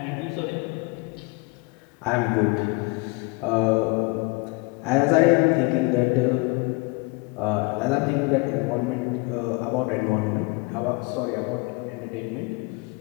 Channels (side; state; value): right; quieter; 27.7 dB